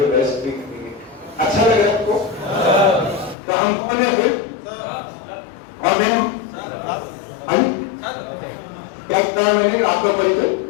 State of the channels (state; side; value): drops out; right; at 3.4 s